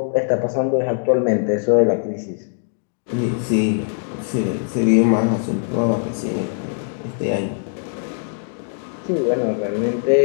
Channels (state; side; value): silent; right; digital silence